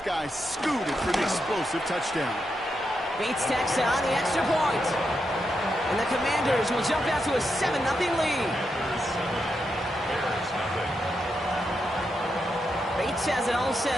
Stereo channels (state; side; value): normal; both; correlation 0.84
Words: guy scooted for the explosive touchdown. Bates tacks on the extra point. And the Commanders will jump out to a 7-0 lead. Bates has it all